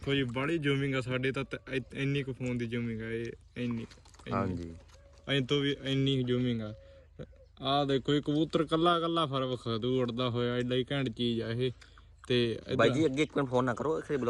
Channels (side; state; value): both; identical; correlation 1.00